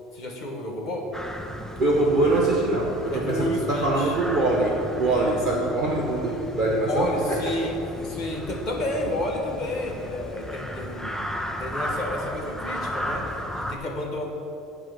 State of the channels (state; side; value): normal; both; correlation 0.47